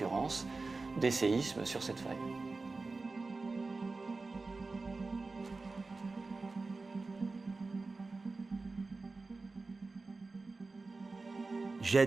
des séismes sur cette faille.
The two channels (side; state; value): left; quieter; 3.7 dB